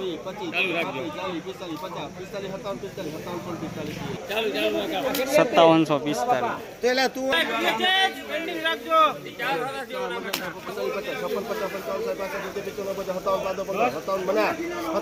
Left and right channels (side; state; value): both; identical; correlation 1.00